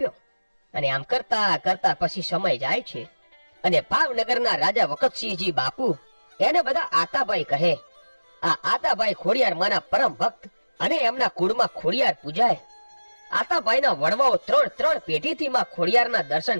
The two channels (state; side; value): inverted; both; correlation -1.00